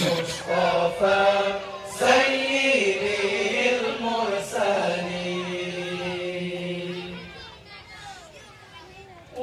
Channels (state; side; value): identical; both; correlation 1.00